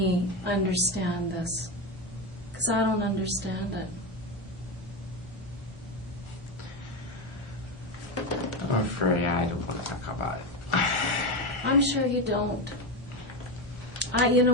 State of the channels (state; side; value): normal; both; correlation 0.15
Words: understand this. Because I don't understand it. I'm afraid I don't want to talk about it. I'm sure you don't. You know